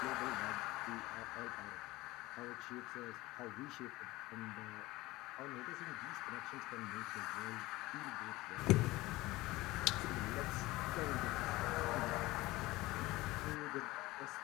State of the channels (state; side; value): quieter; right; 19.5 dB